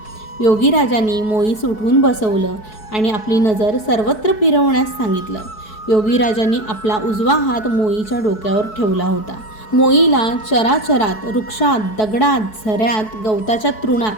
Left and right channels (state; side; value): late; right; 4.6 ms